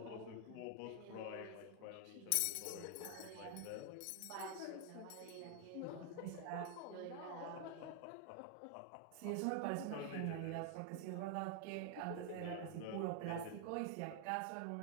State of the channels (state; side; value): different; both; correlation 0.00